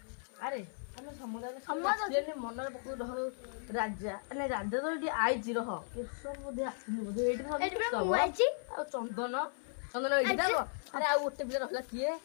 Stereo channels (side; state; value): right; silent; 54 dB below the other